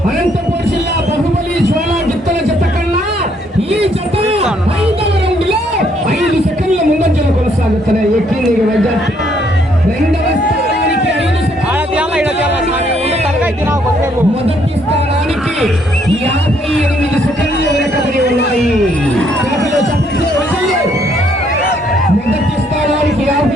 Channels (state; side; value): normal; both; correlation 0.69